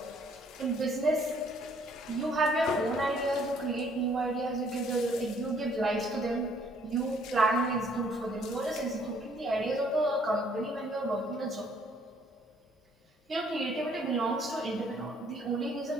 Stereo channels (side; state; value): both; normal; correlation 0.63